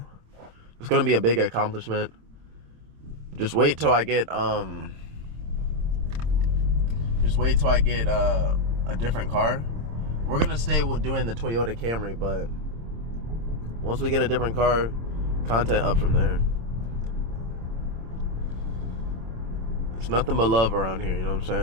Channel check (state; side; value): late; left; 26 ms